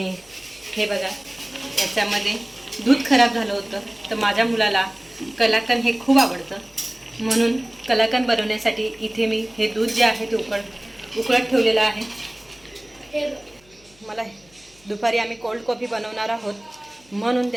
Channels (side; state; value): left; noise; hum, 29 dB below the sound